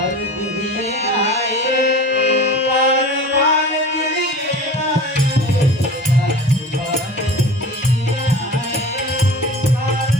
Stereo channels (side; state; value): both; normal; correlation 0.36